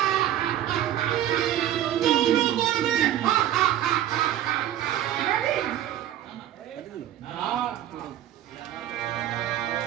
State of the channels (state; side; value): quieter; left; 12.0 dB